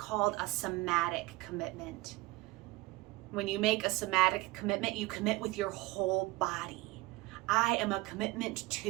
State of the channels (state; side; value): quieter; left; 20.3 dB